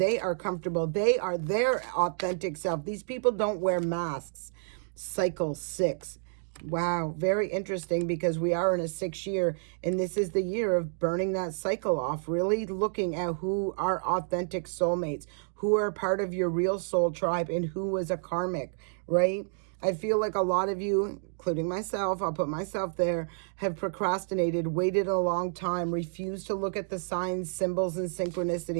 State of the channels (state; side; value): silent; left; digital silence